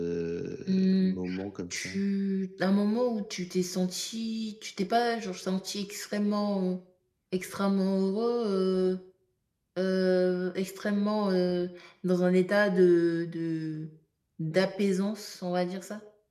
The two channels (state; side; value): identical; both; correlation 1.00